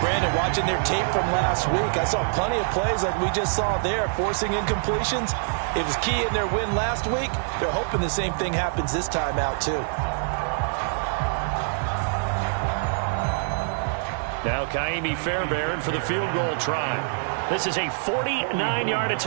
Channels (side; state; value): left; silent; 62 dB below the other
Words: Brandon, watching their tape from last week, I saw plenty of plays like we just saw there, forcing incompletions. It was key in their win last week. They're hoping the same thing happens this time out, too. Now Kaimi Fairbairn for the field goal try. This is a 49-yard